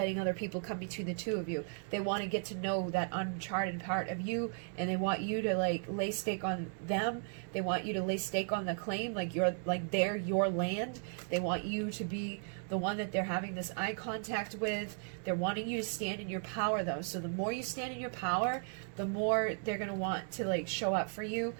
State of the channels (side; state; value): left; silent; 54 dB below the other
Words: other people come between the two of you. They want to get to know that uncharted part of you, and they want you to, like, lay stake on them. They want you to lay stake on the claim, like you're, like, they're your land. They want you to be the one that they're having this eye contact with. They're wanting you to stand in your power, though. So the more you stand in your power, the more they're going to want to, like, show up for you,